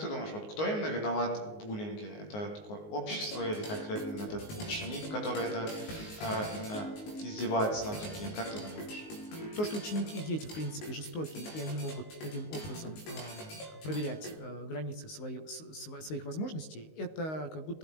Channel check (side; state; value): right; late; 19 ms